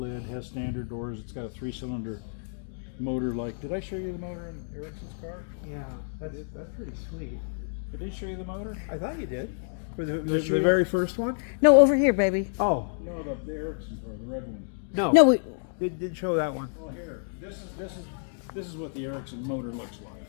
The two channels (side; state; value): right; silent; digital silence